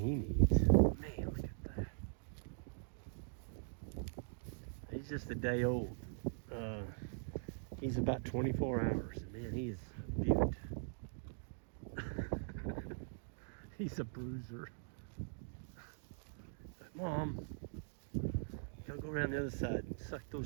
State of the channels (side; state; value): left; silent; digital silence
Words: he needs. Man, look at that. He's just a day old. He's about 24 hours. Man, he is a beaut. He's a bruiser. Mom, gotta go around the other side and suck